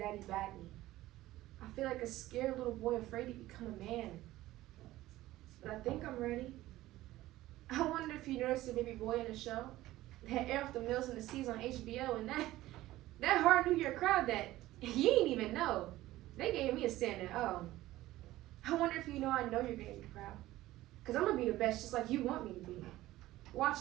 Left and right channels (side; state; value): left; quieter; 16.2 dB